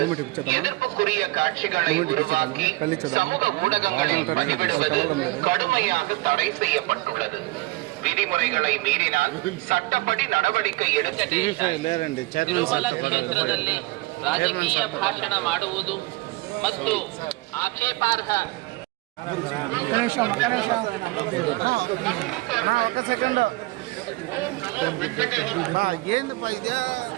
எதிர்ப்புக்குரிய காட்சிகளை உருவாக்கி சமூக ஊடகங்களில் பதிவிடுவது கடுமையாக தடை செய்யப்பட்டுள்ளது. ವಿಧಿಮುறைகளை ಮೀರಿனால் ಚಟ್ಟಪಡಿ நடவடிக்கை எடுக்க. ತಿರುಮಲ ಕ್ಷೇತ್ರದಲ್ಲಿ ರಾಜಕೀಯ ಭಾಷಣ ಮಾಡುವುದು ಮತ್ತು ಆಕ್ಷೇಪಾರ್ಹ ఒక సెకండ్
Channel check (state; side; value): quieter; left; 21.5 dB